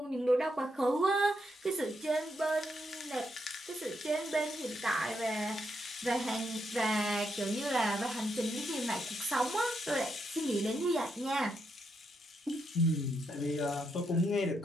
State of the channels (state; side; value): normal; both; correlation 0.80